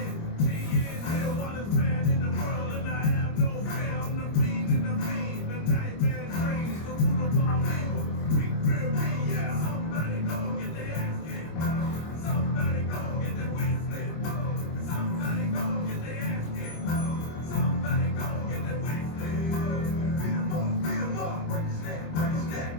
while it's bad in the world and I have no fear. I'm the fiend and the fiend, the nightmare dreams, the root of all evil. Big fear me, yeah. Somebody go get their ass kicked. Somebody go get their wig split. Somebody go get their ass kicked. Somebody go get their wig split. Beat 'em up, break his neck, break his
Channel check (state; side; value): late; right; 25 ms